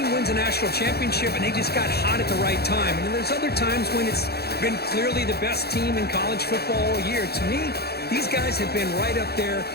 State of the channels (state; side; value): late; right; 0.46 ms